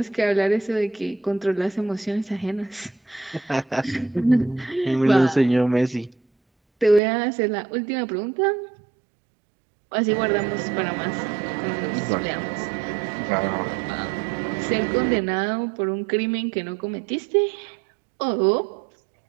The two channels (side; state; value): left; drops out; at 7.0 s